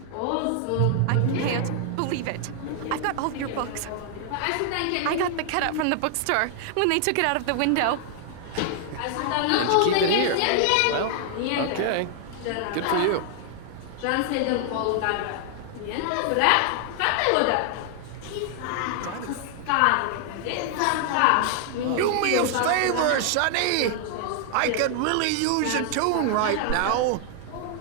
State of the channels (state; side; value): different; both; correlation 0.00